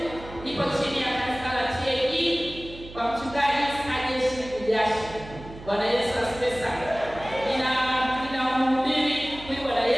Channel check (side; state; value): right; noise; hum, 15 dB below the sound